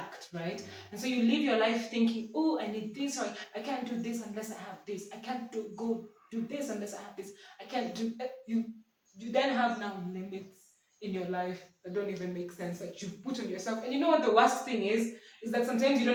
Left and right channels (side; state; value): both; identical; correlation 1.00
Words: right? And so you live your life thinking, oh, I need this, or I can't do this unless I have this. I can't go do this unless I have this. I can't do you then have now limits in your life that don't even make sense, that you put on yourself. And you know what the worst thing is that sometimes you